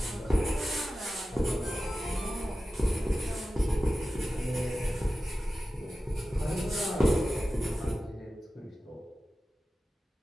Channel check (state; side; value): normal; both; correlation 0.94